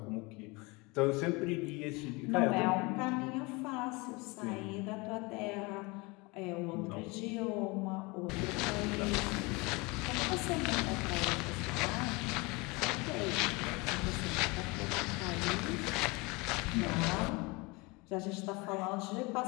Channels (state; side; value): quieter; right; 26.1 dB